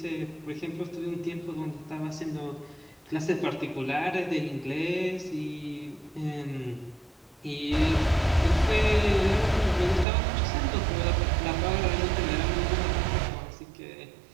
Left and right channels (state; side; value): drops out; left; at 10.1 s